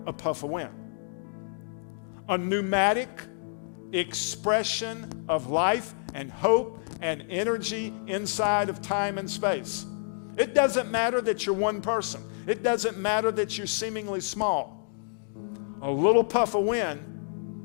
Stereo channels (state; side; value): silent; right; digital silence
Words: a puff of wind. A pneumatic expression of life and hope and energy inside of time and space. It doesn't matter that you're one person. It doesn't matter that you're seemingly small. A little puff of wind